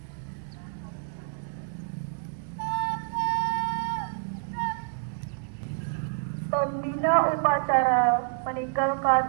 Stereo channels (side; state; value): left; silent; 57 dB below the other